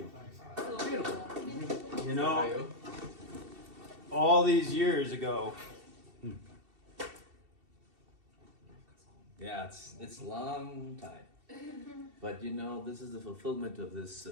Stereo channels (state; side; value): late; left; 2.7 ms